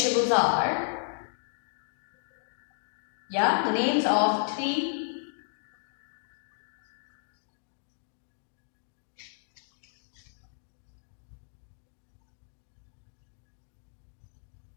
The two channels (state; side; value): silent; right; digital silence